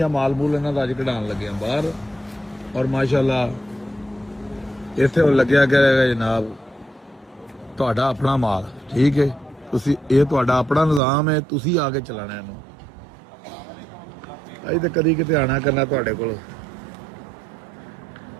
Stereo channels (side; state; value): left; drops out; at 11.0 s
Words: ਮਾਲ ਮੂਲ ਇਹਨਾਂ ਦਾ ਅੱਜ ਕਢਾਉਣ ਲੱਗੇ ਆ ਬਾਹਰ। ਔਰ ਮਾਸ਼ਾਅੱਲਾ ਇੱਥੇ ਹੁਣ ਲੱਗਿਆ ਕਰੇਗਾ ਜਨਾਬ ਤੁਹਾਡਾ ਆਪਣਾ ਮਾਲ। ਠੀਕ ਹੈ, ਤੁਸੀਂ ਇਹ ਤੁਹਾਡਾ ਆਪਣਾ ਨਿਜ਼ਾਮ ਹੈ, ਤੁਸੀਂ ਆ ਕੇ ਚਲਾਣਾ ਇਹਨੂੰ। ਅਸੀਂ ਤਾਂ ਕਦੀ ਕਿਤੇ ਆਣਾ ਕਰਨਾ ਤੁਹਾਡੇ ਕੋਲ।